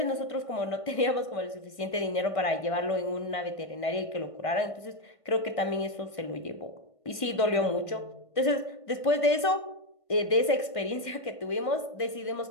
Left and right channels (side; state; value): right; late; 1.5 ms